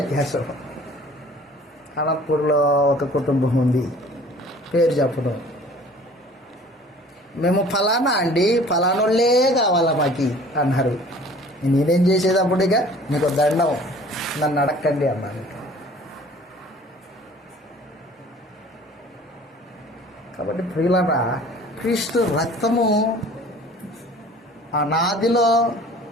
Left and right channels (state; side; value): normal; both; correlation 0.49